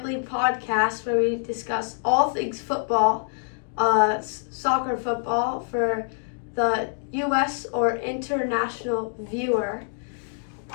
Podcast, where we discuss all things football, soccer football for the U.S. or international viewer.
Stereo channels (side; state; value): right; silent; digital silence